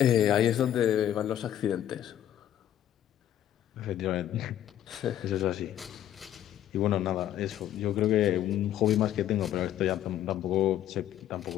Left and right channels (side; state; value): right; quieter; 11.4 dB